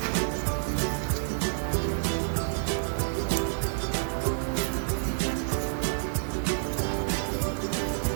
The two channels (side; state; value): left; silent; 59 dB below the other